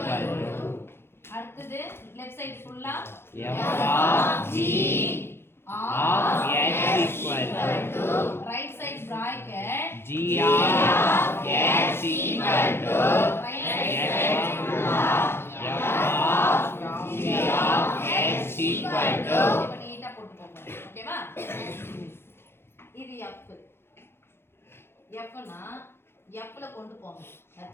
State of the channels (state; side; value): late; right; 0.11 ms